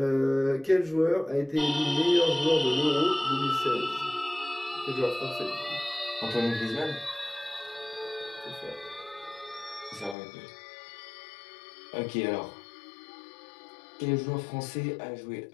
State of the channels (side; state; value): right; drops out; at 10.2 s